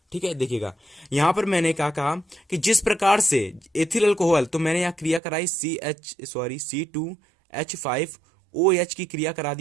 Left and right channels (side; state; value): left; drops out; at 5.2 s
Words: ठीक है। देखिएगा यहां पर मैंने क्या कहा कि जिस प्रकार से एथिल अल्कोहल, तो मैंने यहां क्रिया कराई C2H5OH की क्रिया करा